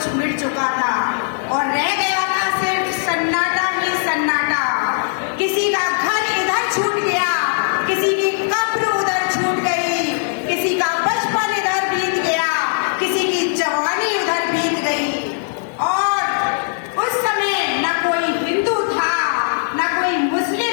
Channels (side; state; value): right; silent; 66 dB below the other